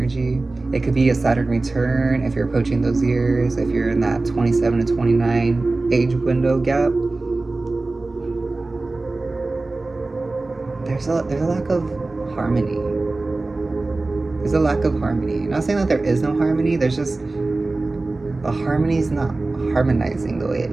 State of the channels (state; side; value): quieter; left; 3.2 dB